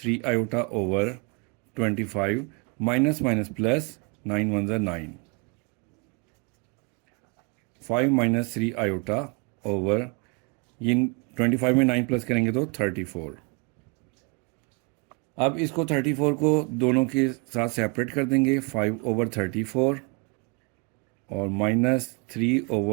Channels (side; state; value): left; quieter; 31.0 dB